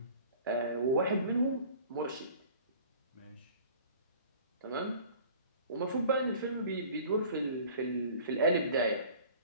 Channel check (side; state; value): both; inverted; correlation -0.47